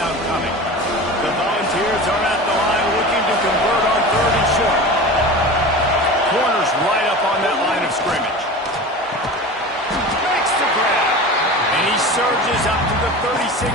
coming. The Volunteers are at the line looking to convert on 3rd and short. Corners right up on that line of scrimmage. Makes the grab. And he surges up to the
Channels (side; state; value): both; normal; correlation 0.33